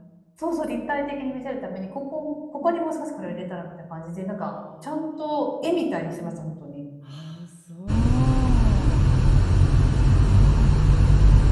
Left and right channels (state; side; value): identical; both; correlation 1.00